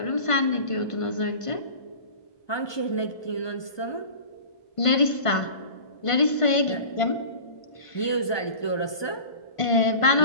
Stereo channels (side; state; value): right; late; 1.5 ms